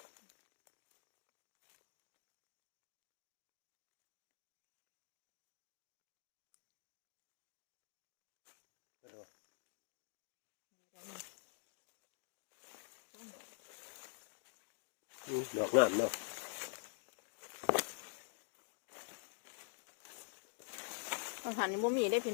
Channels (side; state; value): right; silent; digital silence